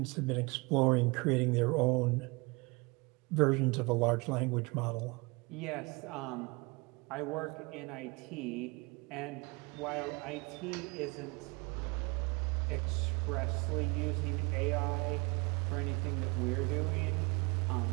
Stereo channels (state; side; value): quieter; left; 27.3 dB